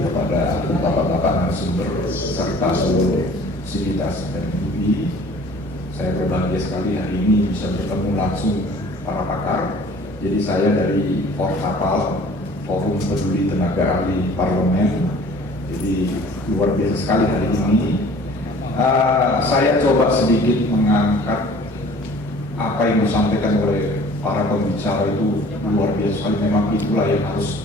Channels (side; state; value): both; normal; correlation 0.49